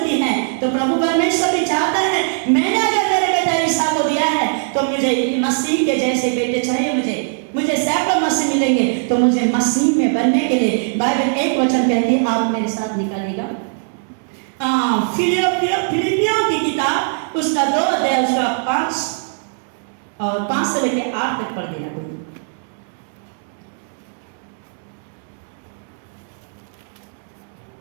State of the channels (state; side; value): silent; left; 66 dB below the other